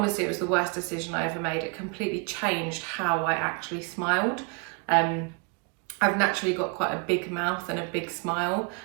it was the worst decision I ever made. It completely changed how I actually smiled. I've naturally got quite a big mouth and a big smile,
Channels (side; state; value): left; quieter; 33.7 dB